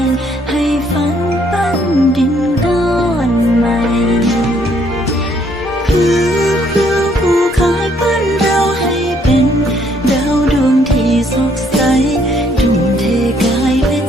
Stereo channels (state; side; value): normal; both; correlation 0.67